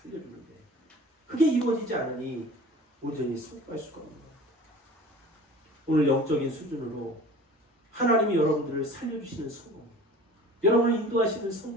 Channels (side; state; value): both; normal; correlation 0.43